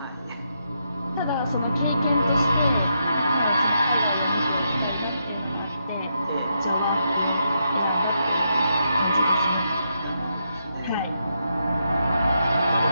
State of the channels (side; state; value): both; inverted; correlation -0.81